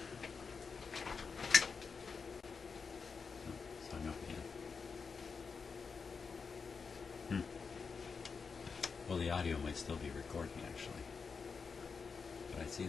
Oh, sign off again. Well, the audio might still be recording actually, but I see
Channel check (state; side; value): quieter; right; 5.3 dB